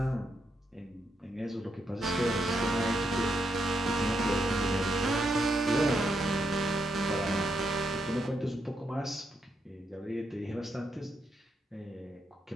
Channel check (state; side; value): normal; both; correlation 0.80